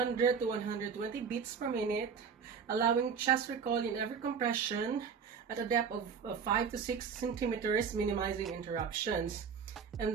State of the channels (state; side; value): quieter; left; 6.4 dB